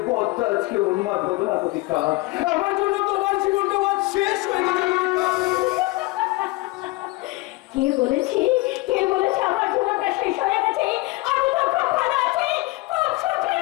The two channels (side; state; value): right; quieter; 22.0 dB